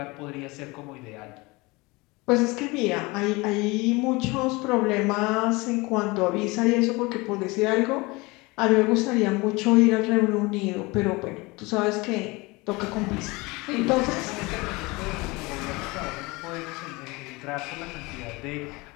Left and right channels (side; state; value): right; quieter; 24.2 dB